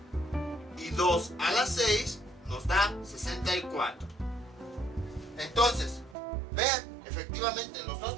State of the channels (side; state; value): left; drops out; at 6.2 s